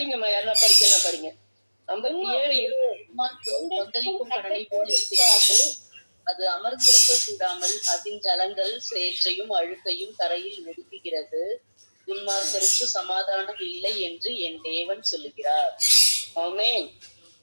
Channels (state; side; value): inverted; both; correlation -1.00